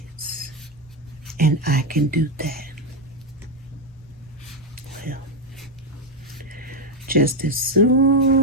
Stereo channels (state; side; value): normal; both; correlation 0.06